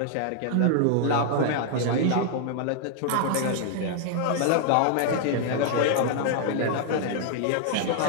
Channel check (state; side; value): different; both; correlation 0.00